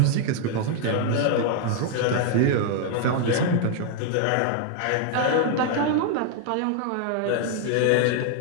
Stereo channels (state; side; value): different; both; correlation 0.00